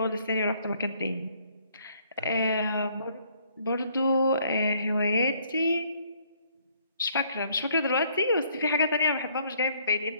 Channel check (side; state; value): both; inverted; correlation -0.65